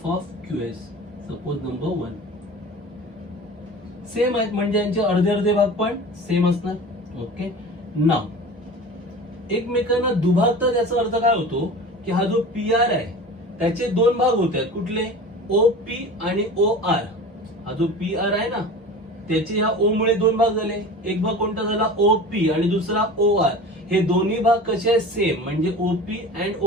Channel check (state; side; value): normal; both; correlation 0.36